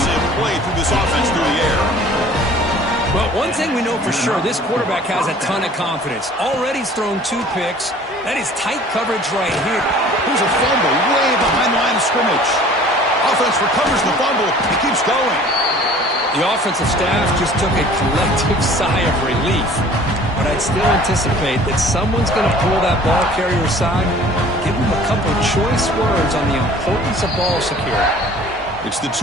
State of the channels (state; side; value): normal; both; correlation 0.49